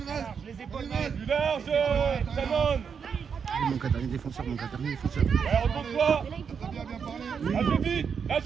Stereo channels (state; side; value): quieter; left; 6.6 dB